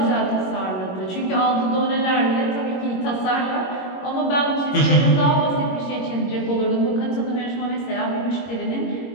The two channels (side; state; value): right; late; 21 ms